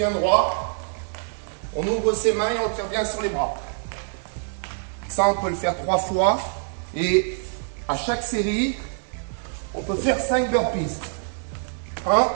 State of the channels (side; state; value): left; silent; digital silence